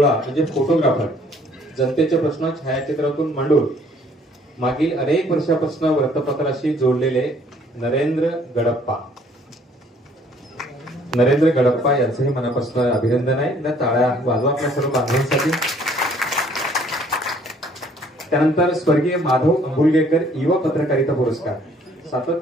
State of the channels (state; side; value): normal; both; correlation 0.60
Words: म्हणजे फोटोग्राफर. जनतेचे प्रश्न छायाचित्रातून मांडून मागील अनेक वर्षापासून वृत्तपत्राशी जोडलेले नरेंद्र गडप्पा. नरेंद्र गडप्पा यांचंही मनापासून अभिनंदन आहे. टाळ्या वाजवा आपल्या सर्व बांधवांसाठी. त्यानंतर स्वर्गीय माधव अंबुलगेकर युवा पत्रकारिता पुरस्कार.